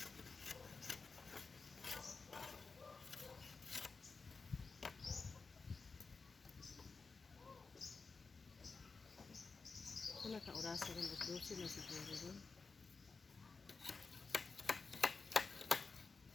Kung naka-orasa rin, 12 na siguro rin.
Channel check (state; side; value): quieter; right; 4.4 dB